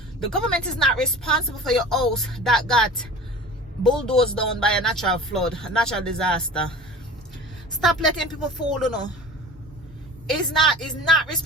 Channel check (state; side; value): normal; both; correlation 0.38